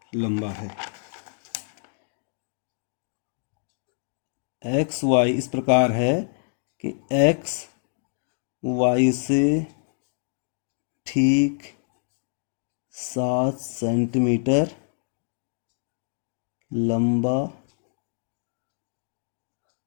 लंबा है। एक्स वाई इस प्रकार है कि एक्स वाई से ठीक 7 सेंटीमीटर लंबा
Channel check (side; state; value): right; silent; 61 dB below the other